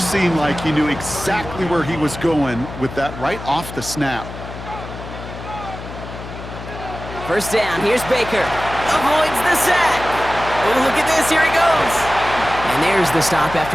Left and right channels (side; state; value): left; noise; hum, 11 dB below the sound